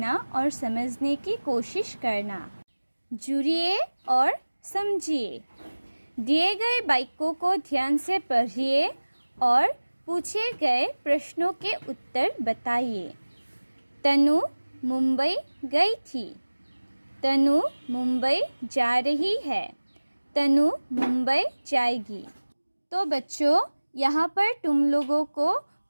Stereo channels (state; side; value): inverted; both; correlation -1.00